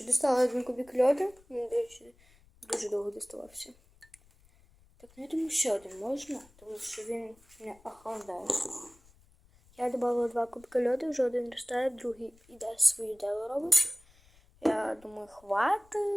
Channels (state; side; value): noise; left; rumble, 29 dB below the sound